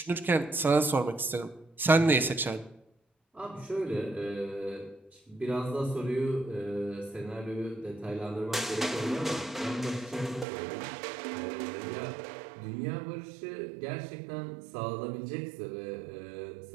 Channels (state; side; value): drops out; left; at 10.5 s